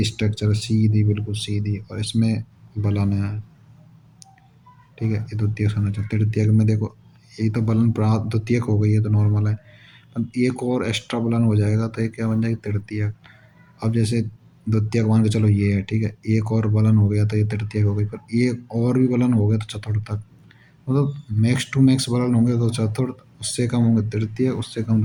स्ट्रक्चर, सीधी बिल्कुल सीधी, और इसमें बलन है, ठीक है। ये द्वितीय संरचना। तृतीयक में देखो, ये तो बलन द्वितीयक हो गई है तो नॉर्मल है, एक और एक्स्ट्रा बलन हो जाएगा तो ये क्या बन जाएगी, तृतीयक। अब जैसे द्वितीयक मान के चलो ये है, ठीक है, एक और बलन हो गया तो ये तृतीयक हो गई, पर एक और भी बलन हो गया तो चतुर्थक। मतलब मैक्स टू मैक्स बलन होंगे तो चतुर्थ, उससे कम होंगे तृतीय, उससे कम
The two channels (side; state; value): both; identical; correlation 1.00